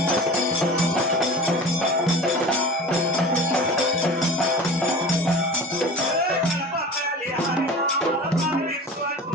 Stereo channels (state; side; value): normal; both; correlation 0.36